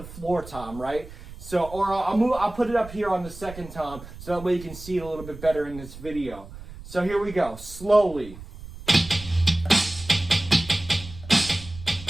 floor tom, right? So, or I'll put it up here on the second tom, so that way you can see it a little bit better in this video. So here we go, slowly.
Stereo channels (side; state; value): right; noise; rumble, 15 dB below the sound